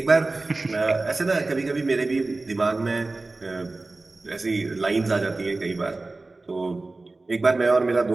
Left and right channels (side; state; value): left; quieter; 3.3 dB